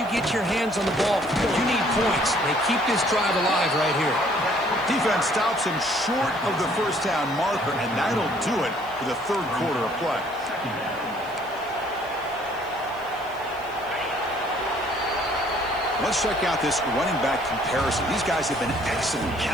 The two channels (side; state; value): right; noise; hiss, 25 dB below the sound